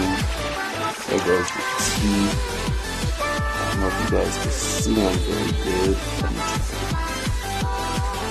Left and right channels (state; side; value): identical; both; correlation 1.00